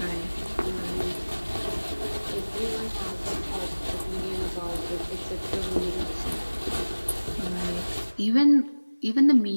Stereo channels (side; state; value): both; inverted; correlation -1.00